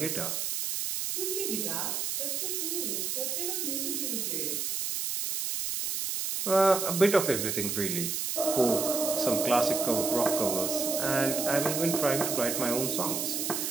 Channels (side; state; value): right; noise; hiss, 1 dB below the sound